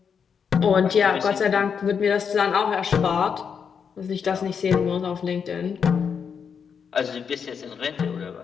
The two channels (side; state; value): right; quieter; 6.7 dB